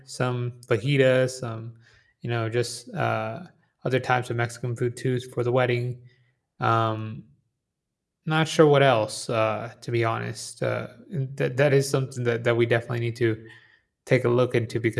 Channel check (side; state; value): both; identical; correlation 1.00